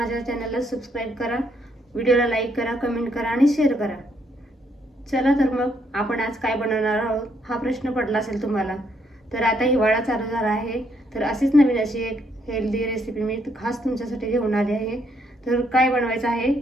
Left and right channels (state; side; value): normal; both; correlation 0.73